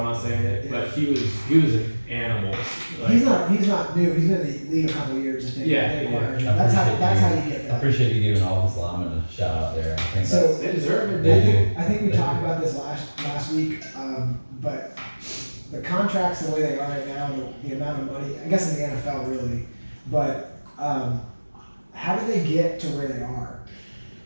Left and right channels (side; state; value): both; inverted; correlation -1.00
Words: not saying it. Yeah. But he was an animal. Like, He's not new. He's been in the league a couple of years. I think. Yeah, They yeah. acquired him. I That's how appreciate you get I that. appreciate you giving all his linemen a shout out there. I think So- they deserve it. They I think we They talked do. about this last week, but the contracts the way they are right now, the amount of money, I guess in the NFL really, but how did they get to where they are?